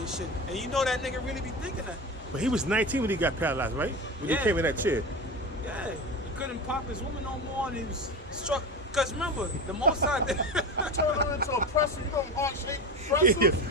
shit. And you know that nigga really be thinking that. But he was 19 when he got paralyzed, right? When he came in that chair. Yeah, he couldn't pop his woman no more, and he was struck. Cause remember, the Most High turned him into a pretzel. You know, heart-shaped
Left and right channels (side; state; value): both; normal; correlation 0.25